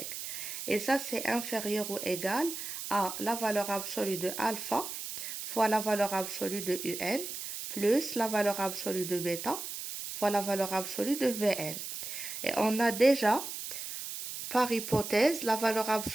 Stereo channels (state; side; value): noise; right; hiss, 7 dB below the sound